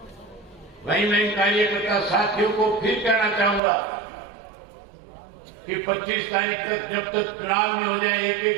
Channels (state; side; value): drops out; left; at 3.6 s